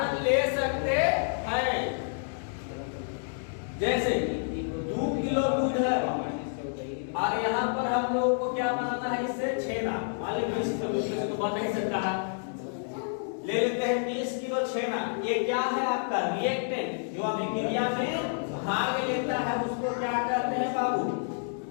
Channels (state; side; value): silent; right; digital silence